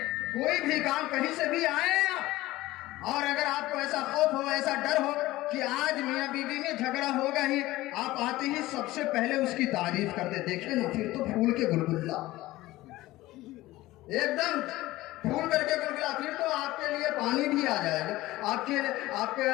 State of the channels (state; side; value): quieter; right; 17.6 dB